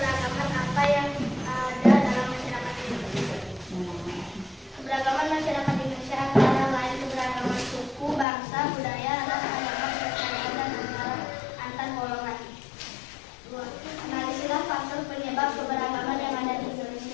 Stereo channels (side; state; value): right; drops out; at 8.2 s